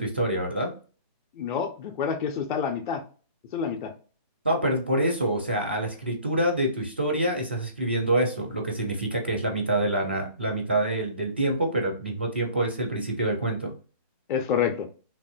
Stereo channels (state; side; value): inverted; both; correlation -0.47